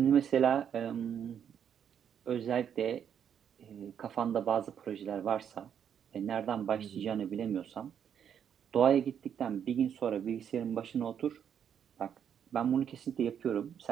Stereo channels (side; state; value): left; quieter; 8.5 dB